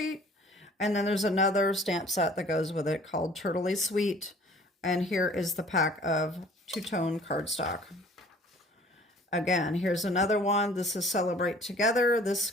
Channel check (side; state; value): both; normal; correlation 0.51